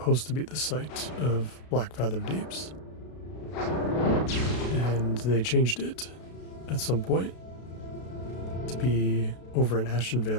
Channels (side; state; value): right; late; 32 ms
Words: to be the site of Blackfathom Deeps. And they changed it at some point to be over in